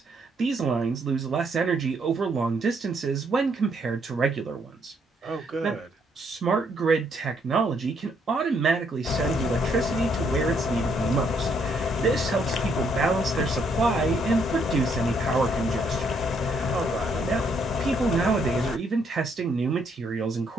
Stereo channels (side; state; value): both; normal; correlation 0.71